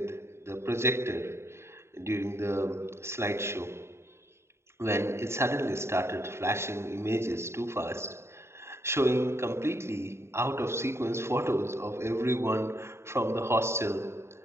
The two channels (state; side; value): late; left; 0.13 ms